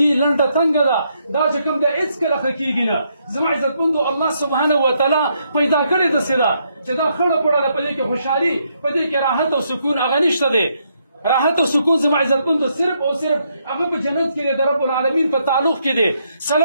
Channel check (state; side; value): inverted; both; correlation -0.76